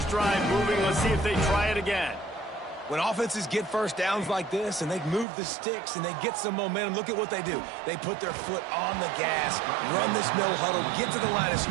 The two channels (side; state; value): left; drops out; at 5.2 s